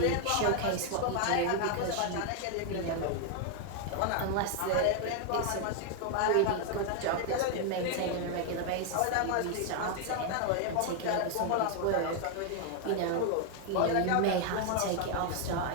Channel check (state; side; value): different; both; correlation 0.00